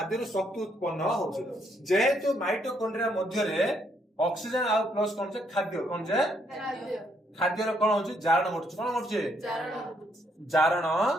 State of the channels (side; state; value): both; normal; correlation 0.72